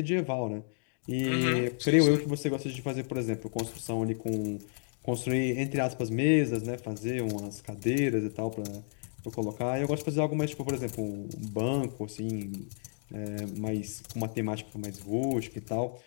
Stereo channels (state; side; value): silent; right; digital silence